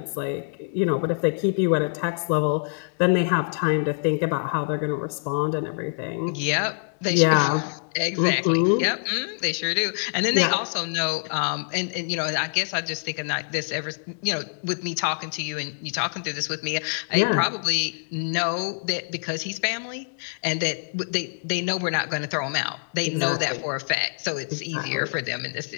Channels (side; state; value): right; silent; 61 dB below the other